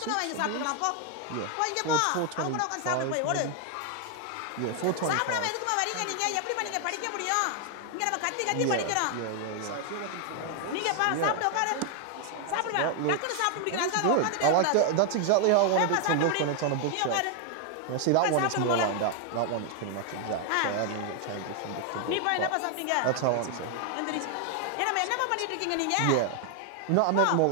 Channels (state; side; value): different; both; correlation 0.00